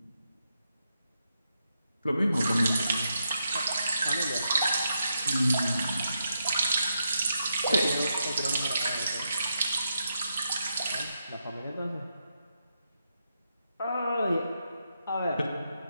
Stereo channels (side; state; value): both; inverted; correlation -0.83